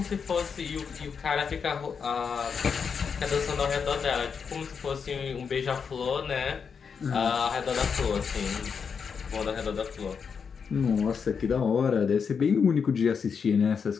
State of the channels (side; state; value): right; quieter; 6.2 dB